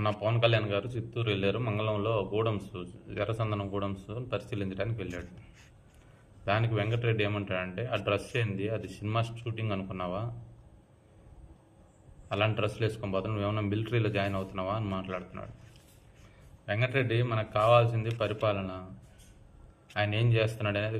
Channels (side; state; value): both; identical; correlation 1.00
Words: పవన్ కళ్యాణ్ గారు చిత్తూరు వెళ్ళారు. మంగళంలో గూడమ్స్, ఎర్రచందనం గూడమ్స్ పరిశీలించడానికి వెళ్ళాడు. దానికి వెంకటరెడ్డి ఏమంటాడంటే, ఆ డ్రెస్ ఏంది, అది సినిమా షూటింగ్ అనుకున్నావా? అలాంటి డ్రెస్సులు వేసుకొని పోతాను, నువ్వేమన్నా మిలిటరీలో జాయిన్ అవుతున్నావా అని మాట్లాడుతున్నాడు. వెంకటరెడ్డి, మనకు కావాల్సింది పరిపాలన. ఆయన ఏం చేస్తున్నాడు అనేది